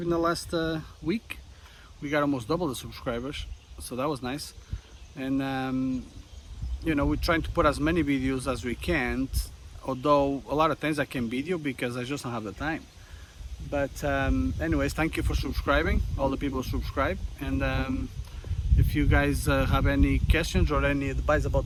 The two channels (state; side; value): identical; both; correlation 1.00